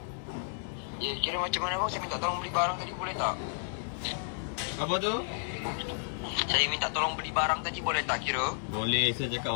Ya, kira macam mana bang? Saya minta tolong beli barang tadi, boleh tak? Apa tu? Saya minta tolong beli barang tadi, boleh tak kira? Boleh, saya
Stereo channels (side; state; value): right; silent; 57 dB below the other